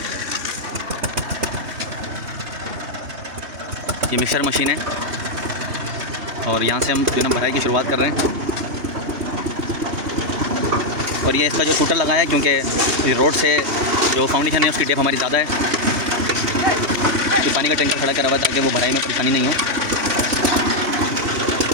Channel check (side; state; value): left; late; 3.2 ms